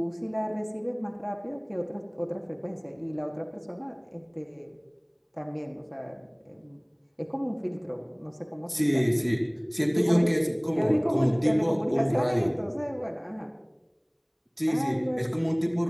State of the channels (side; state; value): both; identical; correlation 1.00